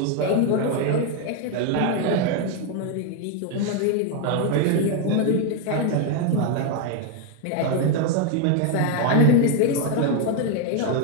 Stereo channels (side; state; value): both; different; correlation 0.01